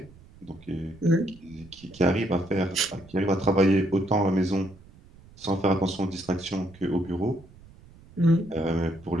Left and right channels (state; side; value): noise; right; rumble, 23 dB below the sound